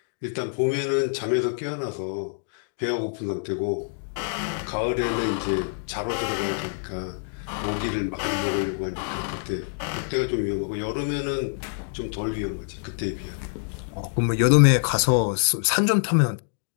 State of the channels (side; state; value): right; silent; digital silence